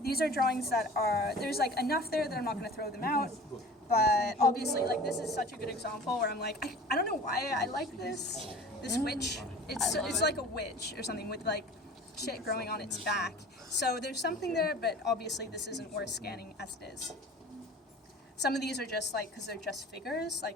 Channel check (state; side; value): normal; both; correlation 0.42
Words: these are drawings that are, there's like enough there that I'm not going to throw them out. But obviously, like, this is such a good example where I'm like, I don't know why I like this witch. It's like a witch or something with like shit growing on its back. So there's something there, but obviously this isn't worth scanning as it is. Some of these are just like, because they're just figures,